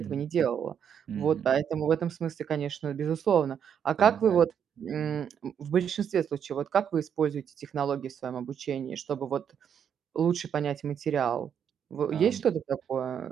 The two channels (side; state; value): left; quieter; 8.2 dB